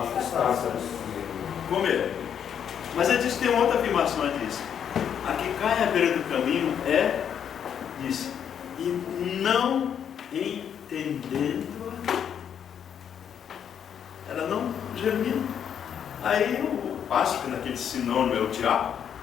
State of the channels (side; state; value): right; quieter; 8.5 dB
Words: comer. Mas ele diz que tem uma outra afirmação, ele diz: a que cai à beira do caminho diz, e não entendendo, ela não germina. Aí o pássaro, naquele sinônimo é o diabo,